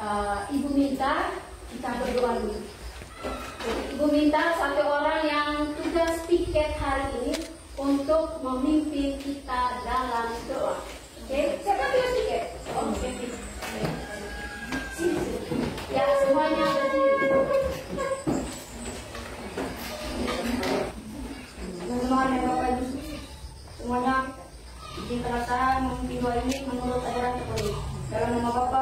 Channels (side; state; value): both; identical; correlation 1.00